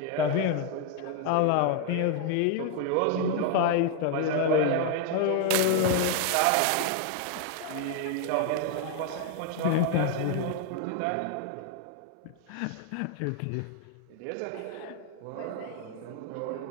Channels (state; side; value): different; both; correlation 0.00